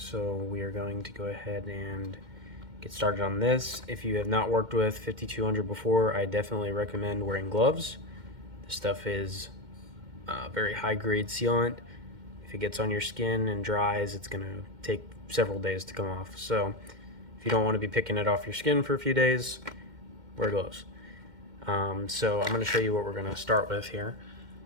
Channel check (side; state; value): left; late; 2.1 ms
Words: we are going to go ahead and get started on this. If you have not worked with 5200 before, I definitely recommend wearing gloves. This stuff is very high grade sealant. If it gets on your skin and dries, it's going to take several days to come off. So if you don't want to be picking it off your skin for a few days, wear gloves. So I'm going to show you what we're going to start with here.